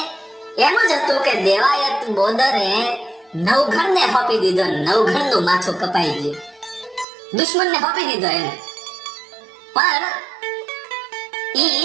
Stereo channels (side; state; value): left; drops out; at 7.1 s